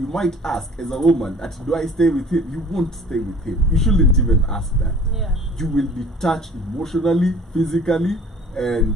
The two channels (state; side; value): normal; both; correlation 0.49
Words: might ask, as a woman, do I stay with him? You won't stay with him. You shouldn't even ask that. Yeah. You will be touched emotionally, physically, and